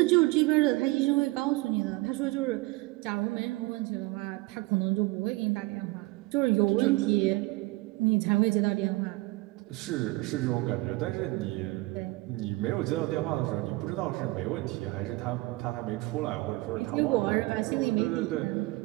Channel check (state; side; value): quieter; left; 21.7 dB